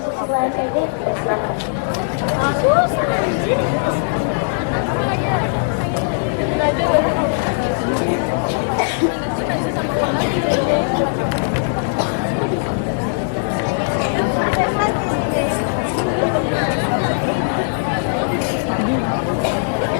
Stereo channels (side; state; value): right; silent; digital silence